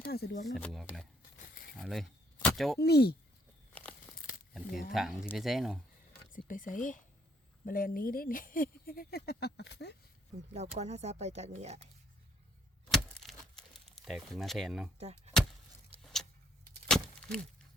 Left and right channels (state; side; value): normal; both; correlation 0.66